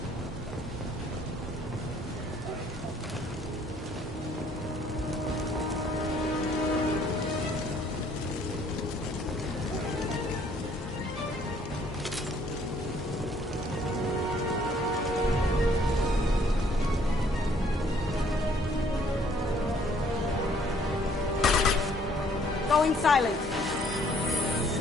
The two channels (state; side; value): normal; both; correlation 0.62